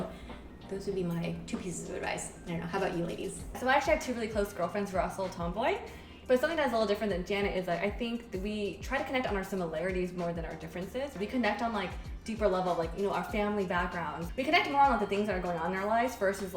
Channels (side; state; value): both; identical; correlation 1.00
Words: those would be my 2 pieces of advice. I don't know, how about you ladies? So I actually have 2 really close girlfriends who are also tomboy. But something that's a little different than Janet is I think that we try to connect on our similarities more than our differences. We connect on deeper level, our family backgrounds. We connect more on the things that are going on in our lives versus